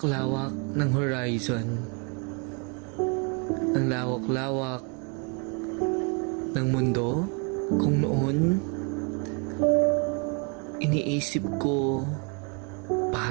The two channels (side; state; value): left; quieter; 35.4 dB